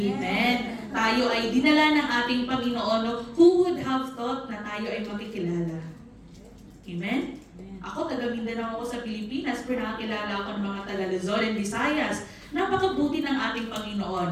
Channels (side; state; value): both; identical; correlation 1.00